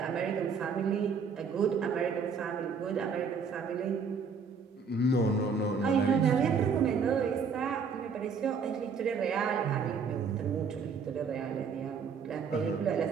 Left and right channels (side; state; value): left; quieter; 5.5 dB